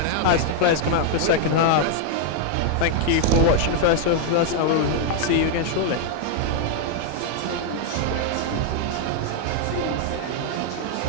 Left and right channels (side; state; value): both; different; correlation 0.00